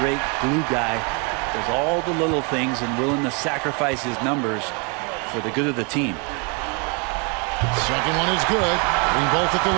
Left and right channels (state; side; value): quieter; left; 33.2 dB